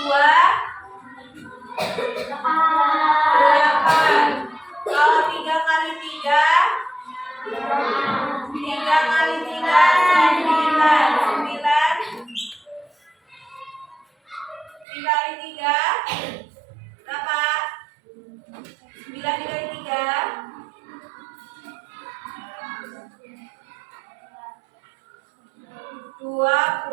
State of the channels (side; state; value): left; drops out; at 14.9 s